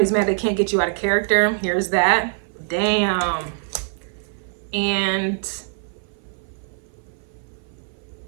mad they can't get you out of character. Here's that. Damn. And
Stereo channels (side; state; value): left; silent; 58 dB below the other